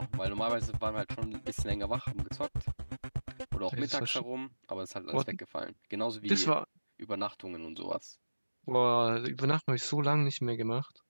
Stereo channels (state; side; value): inverted; both; correlation -1.00